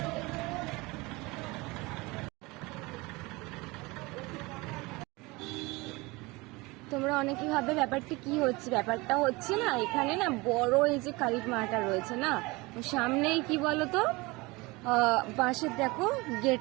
তোমরা অনেকেই ভাবে ব্যাপারটা কি হচ্ছে। ব্যাপারটা হচ্ছে না, এখানে না বড় এই যে কালী মাটা রয়েছে না, সামনেই কি বলতো বাঁশের দেখো গেট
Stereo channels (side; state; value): left; quieter; 23.6 dB